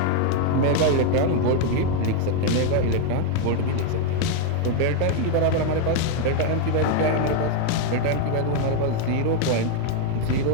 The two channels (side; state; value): both; different; correlation 0.01